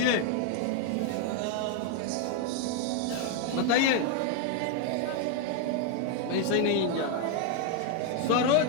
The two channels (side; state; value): both; different; correlation 0.01